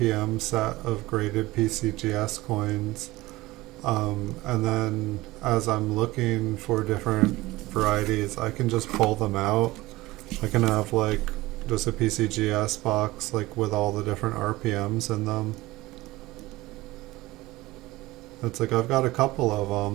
set of graded PCGS coins. And then as I'm looking for different varieties, I can just pull them out. I can have like just a PCGS box like with all the different RPMs in them. It's like I've got a couple of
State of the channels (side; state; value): left; quieter; 19.2 dB